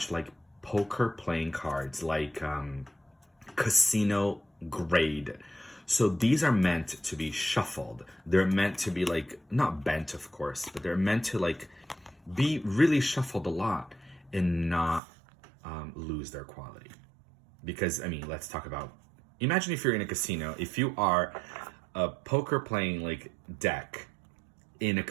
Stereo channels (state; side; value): drops out; left; at 15.0 s